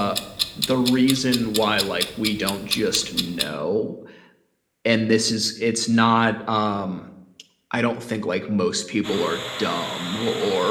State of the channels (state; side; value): identical; both; correlation 1.00